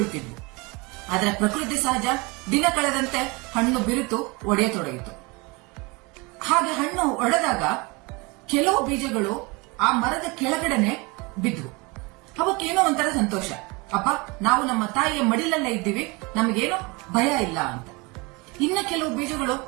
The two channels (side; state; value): left; quieter; 26.8 dB